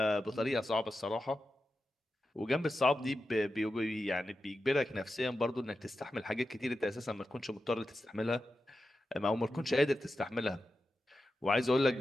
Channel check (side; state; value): both; normal; correlation 0.91